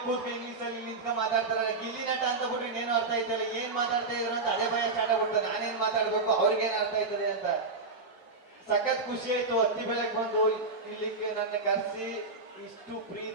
ಕೂತ್ಕ ಇಂಗ್ಲಿಷ್ ಅಲ್ಲಿ ನಿಂತ್ಕ ಮಾತಾಡ್ತಾರೆ. ಗಿಲ್ಲಿ ನಟ ಅಂತ ಬಿಟ್ರೆ ಇನ್ನೇನು ಅರ್ಥ ಆಯ್ತಲ್ಲ, ಏನ್ ಮಾತಾಡ್ತಾ ಇದ್ರು ಅಂತ ಅದೇ ಭಯ ಸ್ಟಾರ್ಟ್ ಆಗ್ಬಿಡ್ತದೆ. ನಾನೇನ್ ಮಾತಾಡ್ಬೇಕು, ಅವ್ರಿಗೇನ್ ಅರ್ಥ ಆಯ್ತದೆ ಅಂತ. ಸಖತ್ ಖುಷಿ ಆಯ್ತು. ಹತ್ತಿ ಬೆಳಗ್ಗೆ ಬಂದು ಇಲ್ಲಿಗೆ ನನ್ನ ಕರೆಸಿ ಇಷ್ಟು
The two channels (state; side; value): quieter; left; 3.8 dB